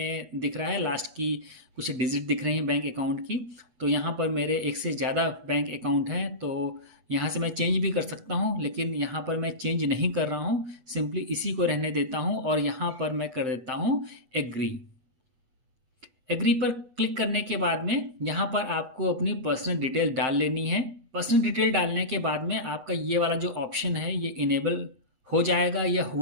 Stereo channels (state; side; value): late; left; 8.1 ms